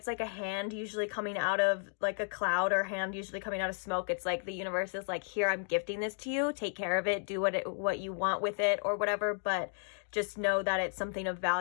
like a hand usually coming out of like a cloud, or hand usually coming out of smoke. It's like the universe is like, here, I'm gifting this to you, take care of it, do what you want with it or whatever, but just know that it's something of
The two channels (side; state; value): right; silent; 55 dB below the other